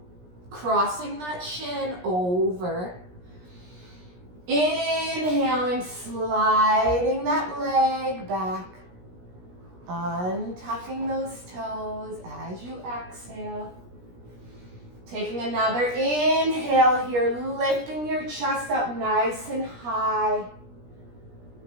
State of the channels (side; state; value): left; late; 17 ms